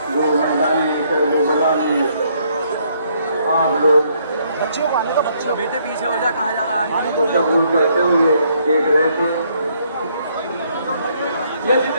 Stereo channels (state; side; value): inverted; both; correlation -0.69